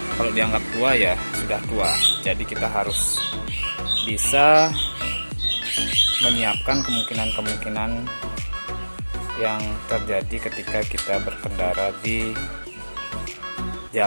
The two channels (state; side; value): inverted; both; correlation -1.00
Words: kalau dianggap tua ya sudah tua. Jadi kita harus bisa menyiapkan kemungkinan-kemungkinan yang terjadi ketika kita berkendara di